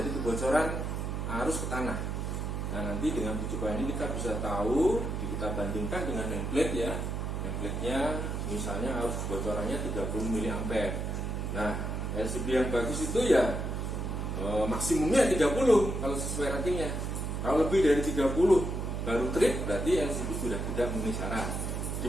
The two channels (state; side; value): noise; right; hum, 2 dB below the sound